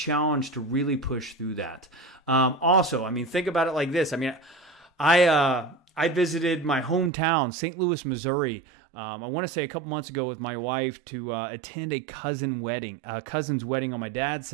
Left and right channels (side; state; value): left; drops out; at 7.1 s